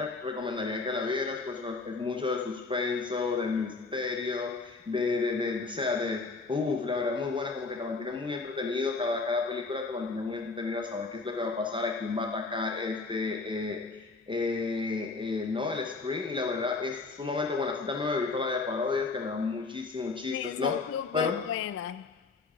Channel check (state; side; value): quieter; right; 3.9 dB